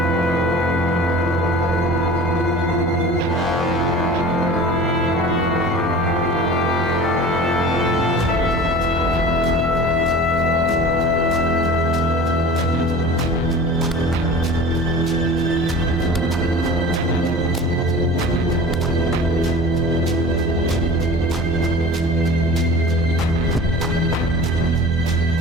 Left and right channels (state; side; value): normal; both; correlation 0.40